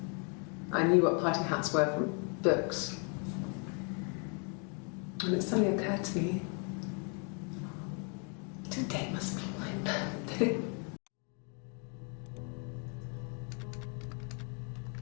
I knew what party hats were from books. And it suddenly occurred to me, today must be my birthday.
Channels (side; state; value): right; quieter; 38.0 dB